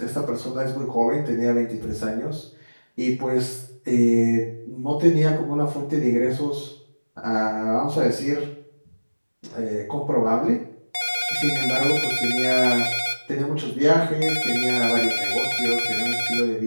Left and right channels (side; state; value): both; inverted; correlation -1.00